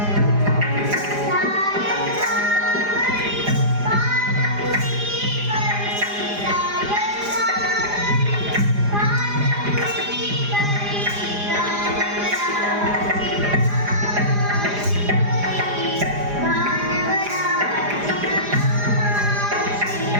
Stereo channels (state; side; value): late; left; 4.9 ms